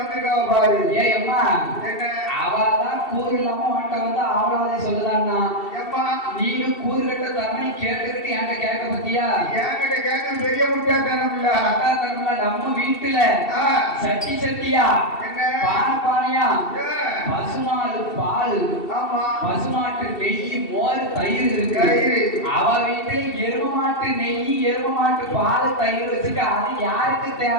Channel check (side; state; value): right; late; 2.7 ms